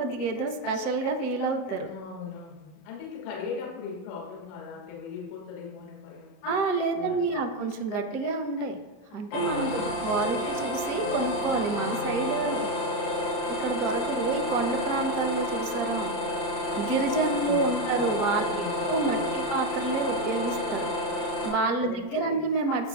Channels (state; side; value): late; right; 33 ms